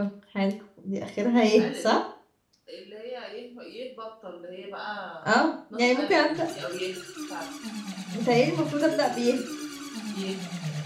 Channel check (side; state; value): both; identical; correlation 1.00